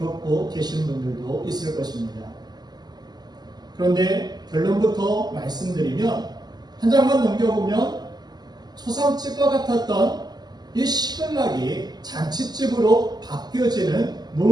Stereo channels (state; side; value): late; left; 0.20 ms